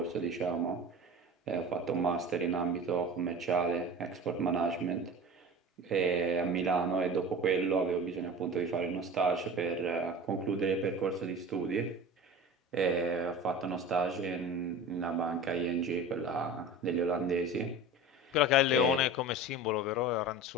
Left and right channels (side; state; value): both; normal; correlation 0.34